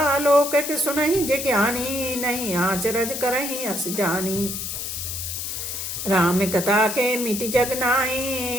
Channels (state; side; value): noise; left; hiss, 5 dB below the sound